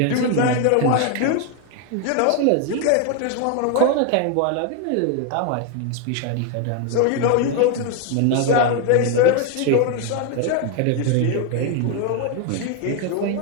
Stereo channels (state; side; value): different; both; correlation 0.01